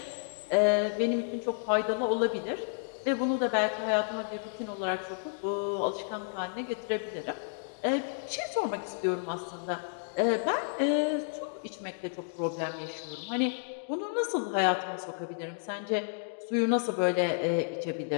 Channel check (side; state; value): right; silent; digital silence